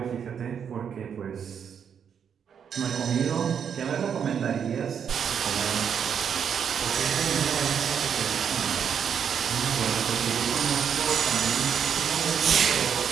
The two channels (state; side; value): quieter; left; 7.7 dB